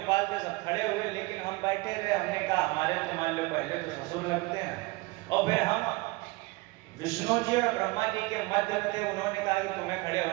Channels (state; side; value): quieter; left; 23.3 dB